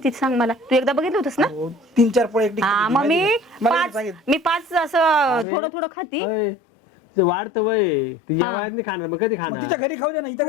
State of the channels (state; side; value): drops out; right; at 5.5 s